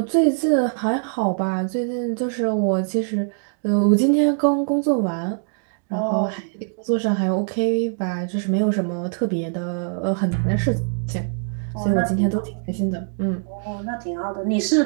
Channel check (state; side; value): silent; left; digital silence